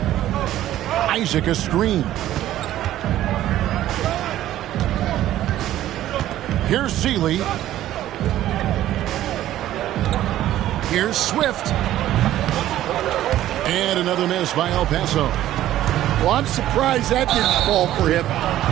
Isaac a screen. Here's Seeley. Here's Swift. And another miss by El Paso. Well, I'm surprised that didn't fall for him.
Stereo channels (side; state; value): left; quieter; 13.3 dB